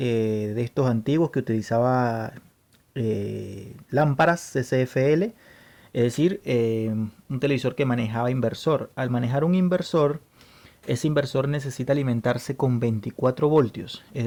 estos antiguos que utilizaba lámparas CCFL, es decir, un televisor que manejaba inversor. Al manejar un inversor, ese inversor necesita alimentarse con 24 voltios, es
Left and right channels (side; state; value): both; identical; correlation 1.00